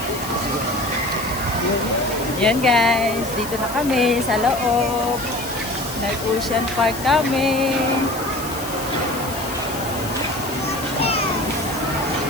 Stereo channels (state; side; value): noise; left; hiss, 11 dB below the sound